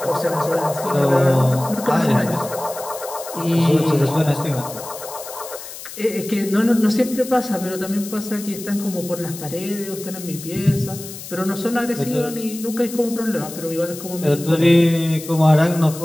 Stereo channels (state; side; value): noise; left; hiss, 12 dB below the sound